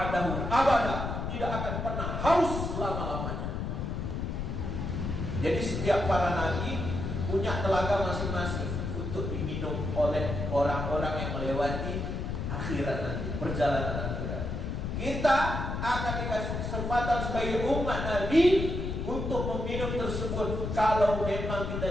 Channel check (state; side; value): noise; left; rumble, 3 dB below the sound